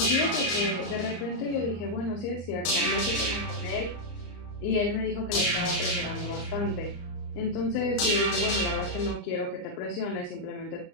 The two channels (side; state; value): right; late; 34 ms